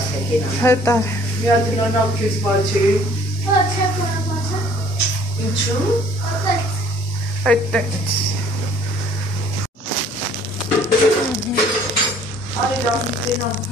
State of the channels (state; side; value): normal; both; correlation 0.56